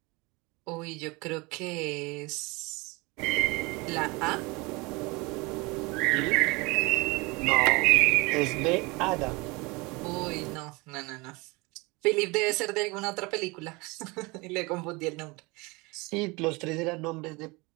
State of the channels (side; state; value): left; quieter; 25.4 dB